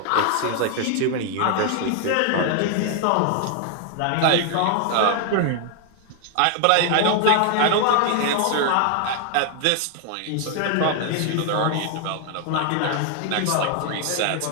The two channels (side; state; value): both; different; correlation 0.00